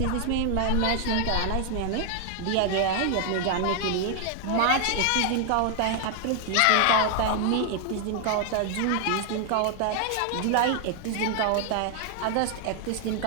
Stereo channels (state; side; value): different; both; correlation 0.00